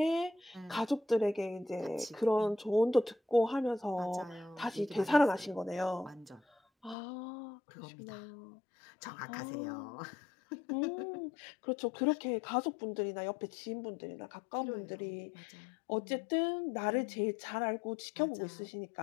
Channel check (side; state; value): right; drops out; at 7.0 s